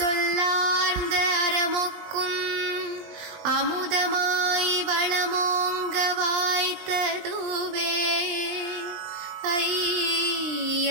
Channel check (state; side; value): late; left; 19 ms